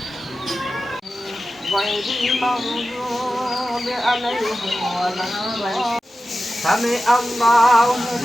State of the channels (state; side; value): normal; both; correlation 0.93